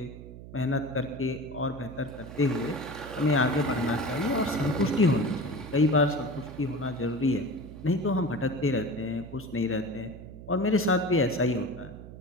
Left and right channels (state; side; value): noise; right; hum, 14 dB below the sound